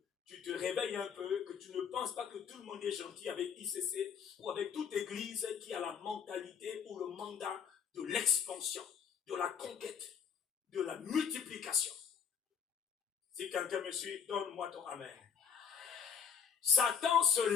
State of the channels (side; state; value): right; quieter; 7.2 dB